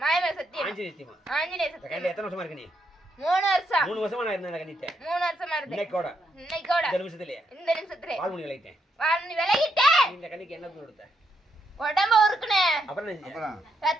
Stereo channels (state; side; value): normal; both; correlation 0.78